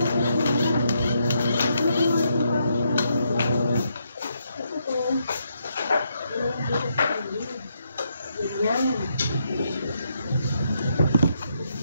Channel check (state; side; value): inverted; both; correlation -0.78